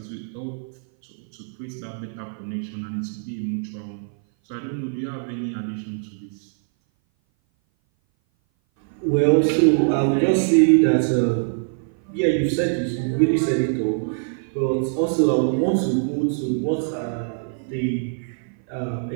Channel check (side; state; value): left; silent; 58 dB below the other